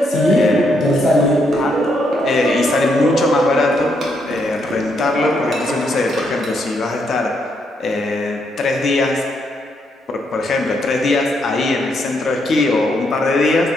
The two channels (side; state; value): both; normal; correlation 0.76